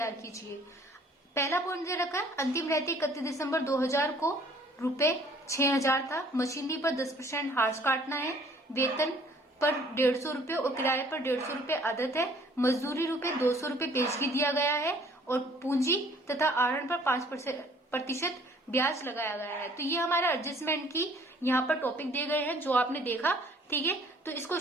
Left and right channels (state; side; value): normal; both; correlation 0.57